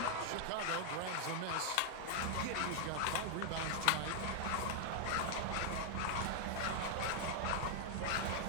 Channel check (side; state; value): both; different; correlation -0.01